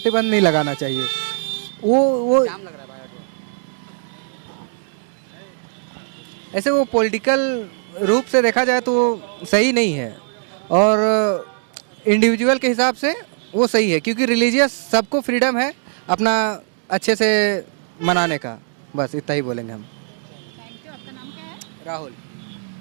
नहीं लगाना चाहिए। वो ऐसे वो पॉलिटिकल रूप से देखा जाए तो वो सही नहीं है, और इंडिविजुअल के हिसाब से वो सही है, क्योंकि रिलीजियस सबको फ्रीडम है अपना अच्छे से मनाने का। बस इतना ही बोलेंगे हम। Thank you. आपका नाम क्या है? राहुल।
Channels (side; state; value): left; silent; digital silence